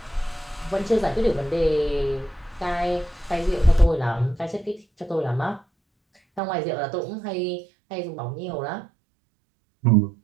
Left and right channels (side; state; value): left; drops out; at 6.4 s